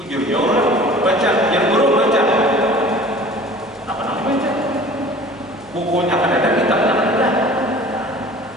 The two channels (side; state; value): right; noise; hum, 26 dB below the sound